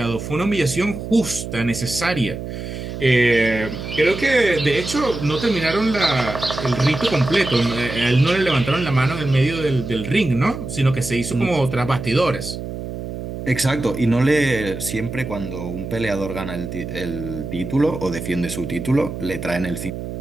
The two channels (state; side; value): noise; right; hum, 7 dB below the sound